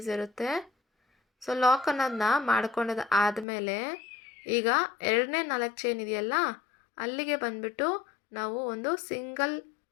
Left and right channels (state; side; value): drops out; right; at 3.5 s